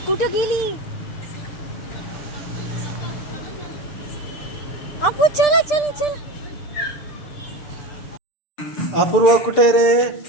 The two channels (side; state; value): right; late; 6.7 ms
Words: कुठं गेली? आपू चला चला चला. अपूर्वा कुठे रे?